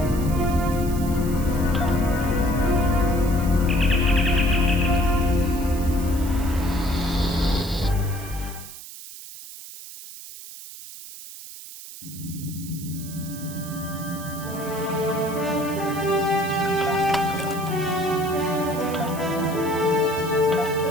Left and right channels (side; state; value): right; noise; hiss, 14 dB below the sound